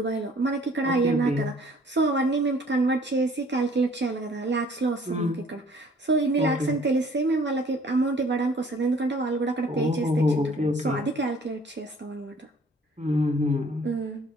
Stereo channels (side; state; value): both; normal; correlation 0.56